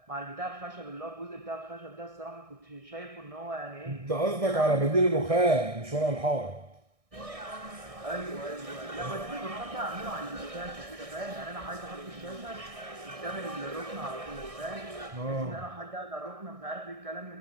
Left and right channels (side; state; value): left; late; 1.6 ms